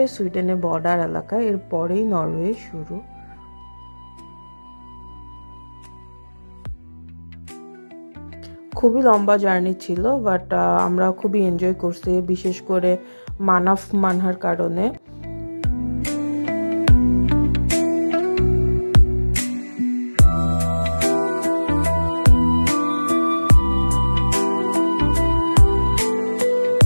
সুইডেনের বর্ডার এলাকা, এর পরেই নরওয়ে শুরু। খুবই লম্বা জার্নি ছিল, বাট আমরা খুবই এনজয় করছি, বিশেষ করে মানাফ মানহার কারণে।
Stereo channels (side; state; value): both; inverted; correlation -1.00